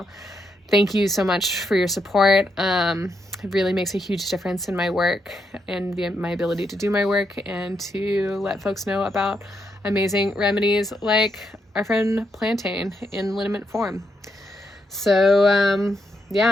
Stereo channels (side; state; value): both; normal; correlation 0.80